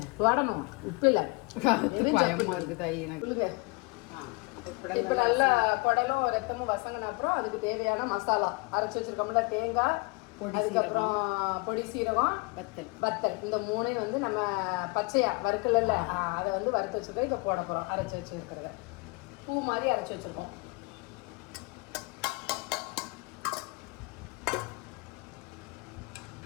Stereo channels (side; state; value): right; quieter; 28.0 dB